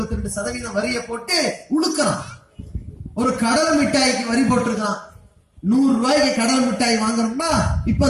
வரியை போட்டு உழுக்கிறான். ஒரு கடல் மிட்டாய்க்கு வரி போட்டிருக்கான். 100 ரூபாய்க்கு கடல் மிட்டாய் வாங்கணும்னா இப்ப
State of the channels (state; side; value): identical; both; correlation 1.00